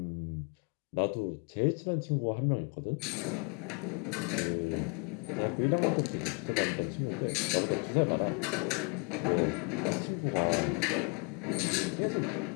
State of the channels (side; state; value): right; quieter; 33.5 dB